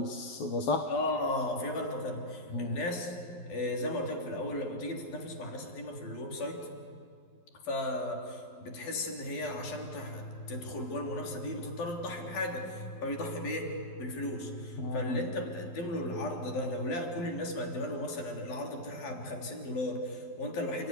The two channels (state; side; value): late; right; 11 ms